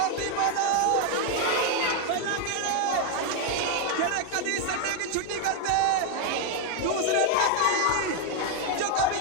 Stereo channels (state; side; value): different; both; correlation 0.01